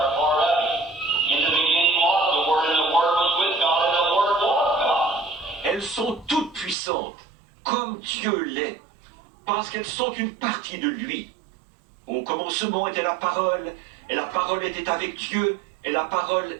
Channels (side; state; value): left; drops out; at 6.8 s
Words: part of Him. In the beginning was the Word, and the Word was with God, and the Word was God. Elles sont toutes puissantes, comme Dieu l'est, parce qu'elles sont une partie de lui. Au commencement était la parole, et la parole était avec Dieu, et la parole